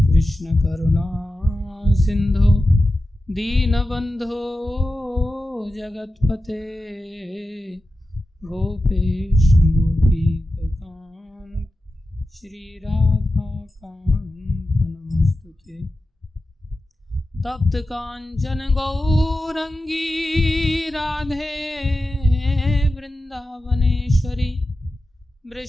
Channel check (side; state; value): both; normal; correlation 0.93